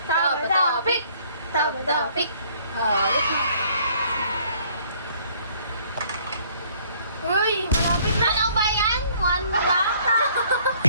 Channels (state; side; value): inverted; both; correlation -0.60